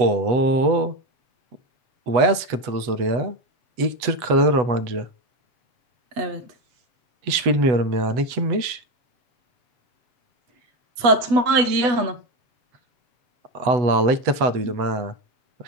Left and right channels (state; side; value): late; left; 8.0 ms